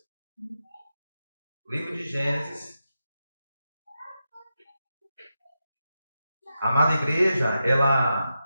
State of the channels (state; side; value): inverted; both; correlation -0.89